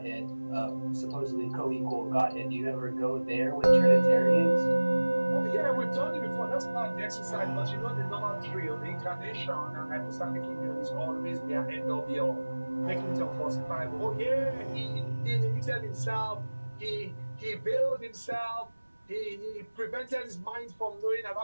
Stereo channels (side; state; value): both; inverted; correlation -1.00